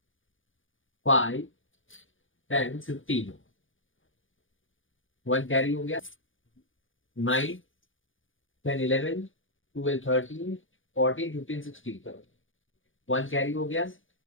5 10 15, 1 कैरी हो गया, 9 10 11 12 13 14 15 16, 1 कैरी हो गया,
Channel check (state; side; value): late; right; 0.58 ms